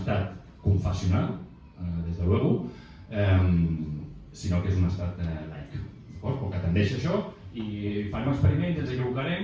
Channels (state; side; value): identical; both; correlation 1.00